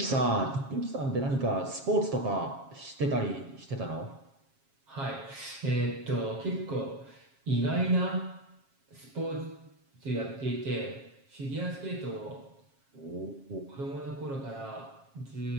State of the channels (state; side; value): late; left; 7.4 ms